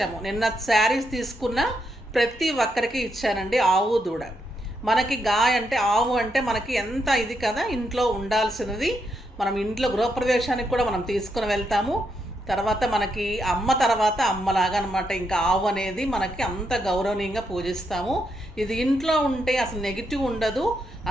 నిన్న శారీస్ తీసుకున్న ప్రతి ఒక్కరికి ఇచ్చానండి. ఆవు దూడ మనకి గాయ అంటే ఆవు అంటే మనకి ఎంత ఇది కదా, ఇంట్లో ఉండాల్సినది. మనం ఇంట్లో గృహప్రవేశానికి కూడా మనం తీసుకుని వెళ్తాము. తర్వాత మనకి అమ్మ తర్వాత అమ్మలాగా అనమాట. ఇంకా ఆవు అనేది మనకి అంత గౌరవనీయంగా పూజిస్తాము. ఇది ఇంట్లో ఉంటే అసలు నెగిటివ్ ఉండదు,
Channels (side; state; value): both; normal; correlation 0.80